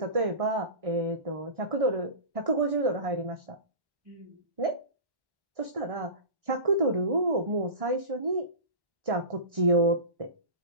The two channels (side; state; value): left; late; 1.6 ms